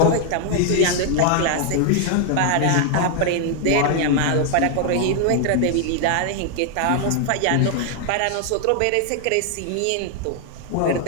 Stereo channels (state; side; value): different; both; correlation 0.00